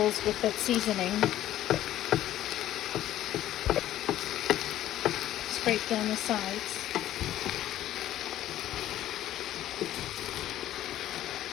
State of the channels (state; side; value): quieter; right; 13.1 dB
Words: with that seasoning. Scrape down the sides.